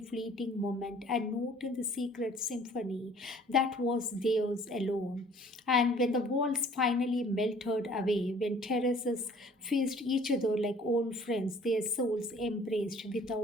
moment a note in the secret symphony that was theirs alone. And when the walls finally melted away, when terraces faced each other like old friends, their souls embraced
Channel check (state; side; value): normal; both; correlation 0.54